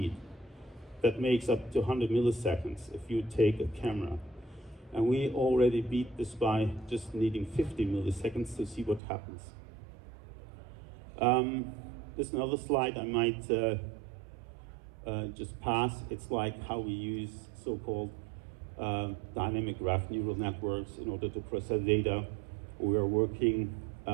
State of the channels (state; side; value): drops out; left; at 9.0 s